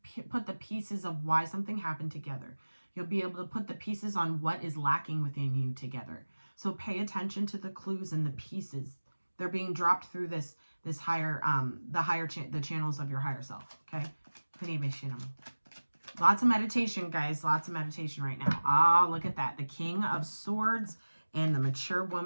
put the pieces of why something happened together. You'll be able to put the pieces on what is lacking within you together. So pay attention to the clues and the pieces. They're being dropped through this higher, the channels of your higher self. Okay. Lots of meditation, guys. Lots of meditation right now. Ah, look at that. The King of Swords and the mature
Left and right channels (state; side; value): inverted; both; correlation -1.00